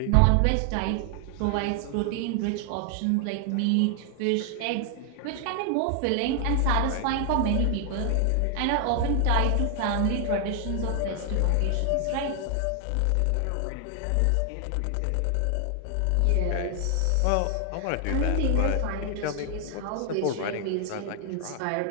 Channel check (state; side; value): different; both; correlation 0.00